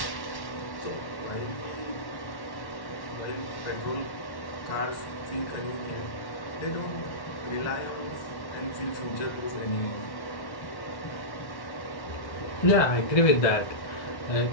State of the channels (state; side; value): late; right; 1.1 ms